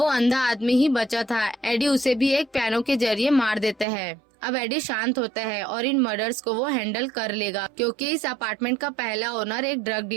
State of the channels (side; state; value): left; drops out; at 3.9 s